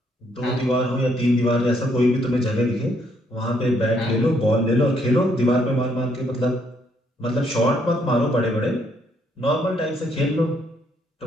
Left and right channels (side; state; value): both; normal; correlation 0.71